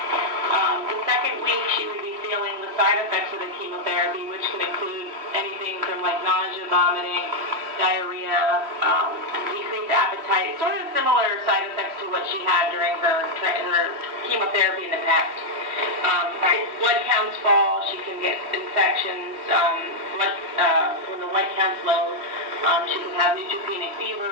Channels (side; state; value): left; late; 3.2 ms